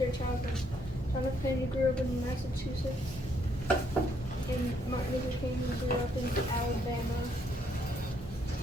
childhood. John F. Kennedy grew up in Massachusetts, and Martin Luther King grew up in Alabama.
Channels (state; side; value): normal; both; correlation 0.71